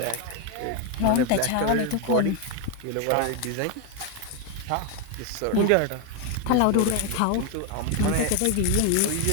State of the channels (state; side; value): different; both; correlation 0.01